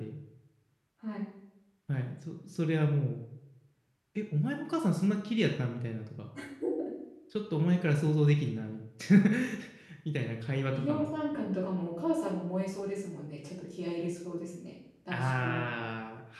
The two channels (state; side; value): identical; both; correlation 1.00